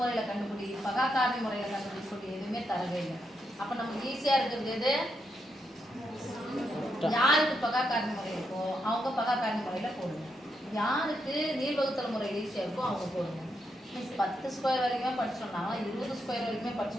கண்டுபிடி, பகாக்காரணி முறையில் கண்டுபிடிக்கூடிய எதுவுமே தரவே இல்லை. அப்போ நமக்கு ஈஸியாக இருக்கிறது எது? யாருக்கு பகாக்காரணி முறை இருக்கோ அவங்க பகாக்காரணி முறையில் போடுங்க. யாருக்கு நீள்வகுத்தல் முறை ஈஸியாக இருக்கோ அவங்க போடுங்க. 10 ஸ்கொயர் வரைக்குமே படிச்சோம்னா 20 ஸ்கொயர் வரைக்குமே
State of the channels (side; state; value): both; normal; correlation 0.81